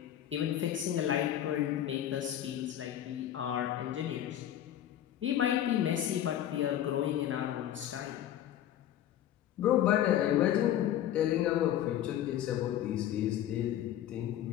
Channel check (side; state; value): right; quieter; 11.5 dB